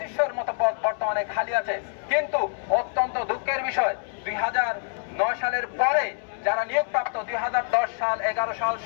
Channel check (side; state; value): right; silent; digital silence